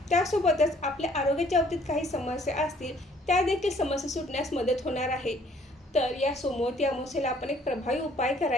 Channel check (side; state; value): both; normal; correlation 0.60